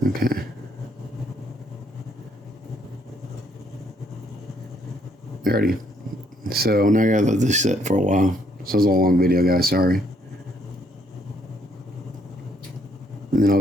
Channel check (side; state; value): both; normal; correlation 0.69